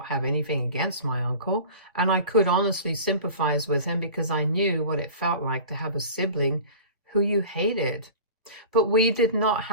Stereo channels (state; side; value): inverted; both; correlation -0.39